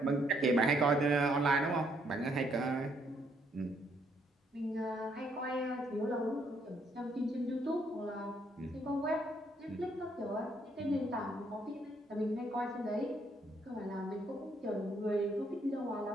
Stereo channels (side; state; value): both; normal; correlation 0.70